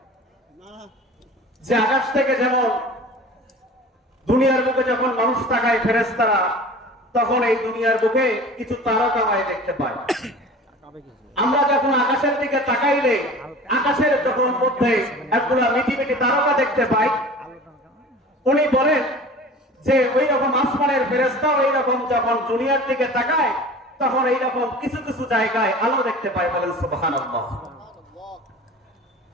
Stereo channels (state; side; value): normal; both; correlation 0.40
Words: যে আকাশ থেকে যেমন দুনিয়ার বুকে যখন মানুষ তাকায় ফেরেশতারা, তখন এই দুনিয়ার বুকে কিছু তারকামায় দেখতে পায়। আমরা যখন আকাশের দিকে তাকাইলে আকাশের যখন মধ্যে একগুলা মিটি মিটি তারকা দেখতে পাই, উনি বলেন যে ওই রকম আসমানের ফেরেশতাও এই রকম যখন দুনিয়ার দিকে তাকায় তখন এই রকম কিছু কিছু জায়গায় আলো দেখতে পায়। বলেন সুবহানাল্লাহ।